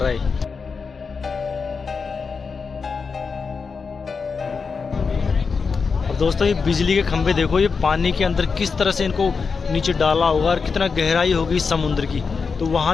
है। अब दोस्तों ये बिजली के खंभे देखो, ये पानी के अंदर किस तरह से इनको नीचे डाला होगा और कितना गहराई होगी समुद्र की, तो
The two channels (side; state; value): right; quieter; 5.1 dB